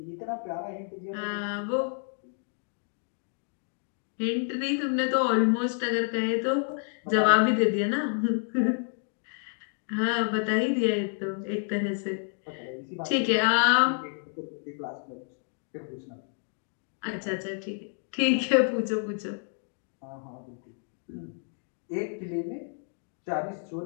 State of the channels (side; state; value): right; silent; 56 dB below the other